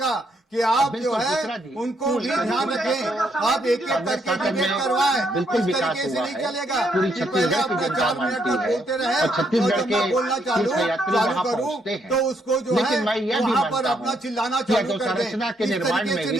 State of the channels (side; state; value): both; normal; correlation 0.74